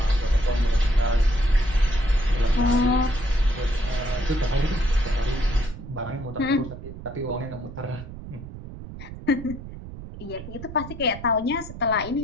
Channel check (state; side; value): noise; right; rumble, 12 dB below the sound